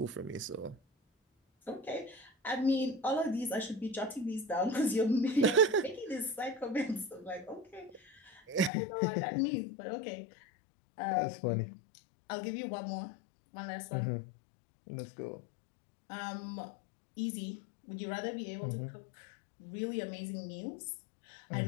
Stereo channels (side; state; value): right; drops out; at 8.7 s